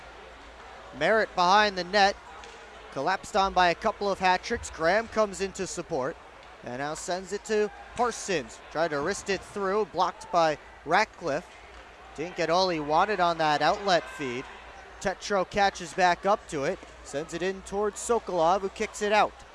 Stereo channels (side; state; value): both; identical; correlation 1.00